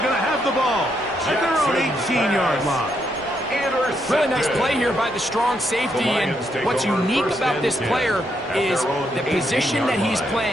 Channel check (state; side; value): normal; both; correlation 0.77